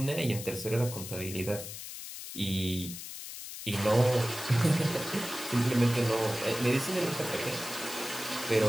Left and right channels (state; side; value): noise; left; hiss, 10 dB below the sound